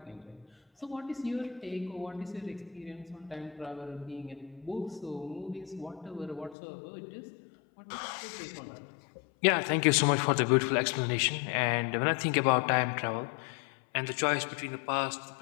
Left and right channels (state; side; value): drops out; right; at 6.6 s